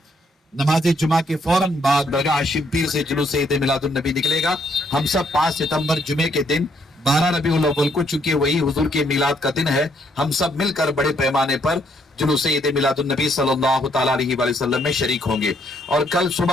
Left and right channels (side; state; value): both; normal; correlation 0.71